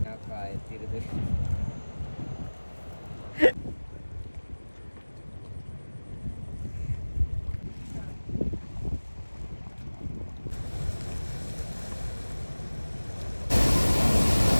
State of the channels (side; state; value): both; inverted; correlation -1.00